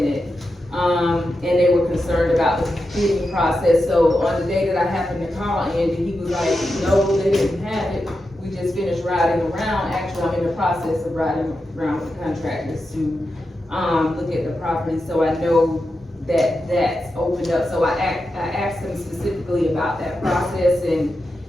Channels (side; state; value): both; normal; correlation 0.89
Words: And they were concerned about the bidding process, so on the day that I happened to call Andy, he was like, no, they didn't have it. We just finished riding around, actually, I'm in the process of riding around with the contractors to, look at the property, so I know that that's opened up. So I asked them specifically about that process and,